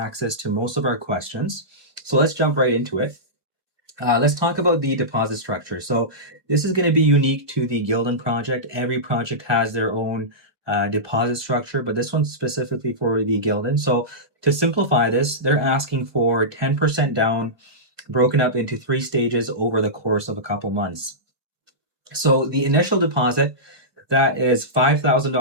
to most of our questions. So let's jump right into it. Let's talk about the deposit structure. So this is going to be unique to the Guilden project. Every project has their own deposit structure, but this one's specifically for the Guilden. So to simplify this, they're asking for 10% down, broken up into 3 stages over the course of a couple months. So the initial deposit, that is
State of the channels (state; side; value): late; left; 1.6 ms